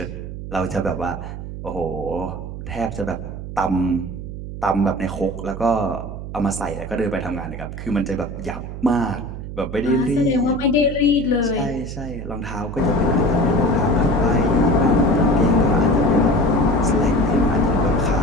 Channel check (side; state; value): right; noise; hum, 9 dB below the sound